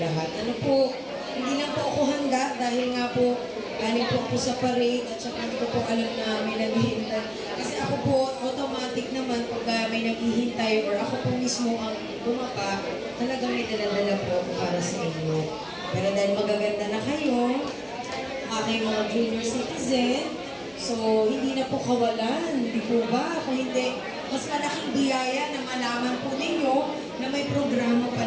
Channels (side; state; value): both; identical; correlation 1.00